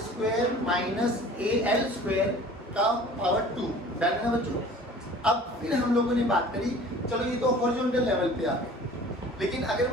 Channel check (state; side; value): normal; both; correlation 0.46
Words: square minus al square का पावर 2। डन है बच्चों? अब फिर हम लोगों ने बात करी, चलो ये तो हॉरिजॉन्टल लेवल पे आ गए, लेकिन अगर